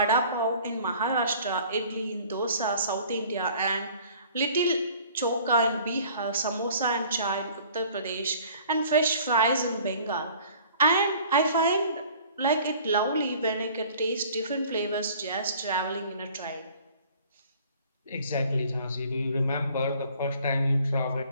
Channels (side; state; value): both; inverted; correlation -0.51